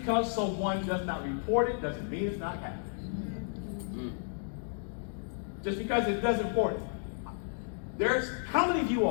someone does not report it doesn't mean it's not happening. Just because it doesn't report it. How many of you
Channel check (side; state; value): right; silent; digital silence